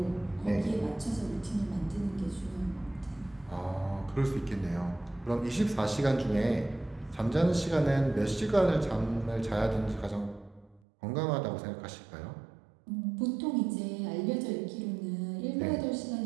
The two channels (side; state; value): left; drops out; at 10.8 s